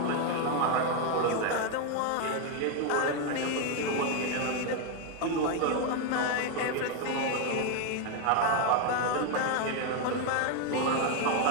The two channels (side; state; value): both; different; correlation 0.01